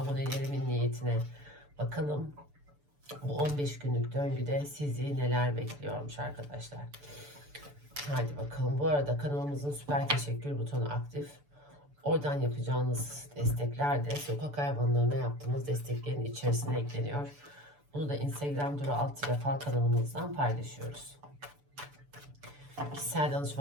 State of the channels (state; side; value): late; left; 6.9 ms